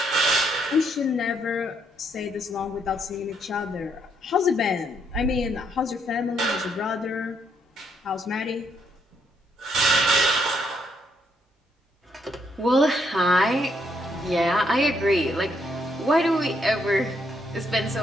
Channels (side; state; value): both; normal; correlation 0.73